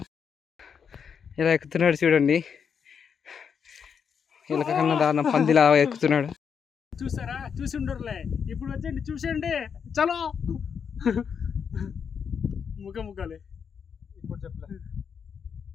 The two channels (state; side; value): quieter; right; 6.8 dB